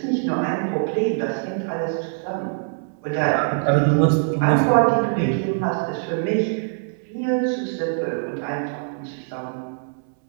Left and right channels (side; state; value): left; silent; 62 dB below the other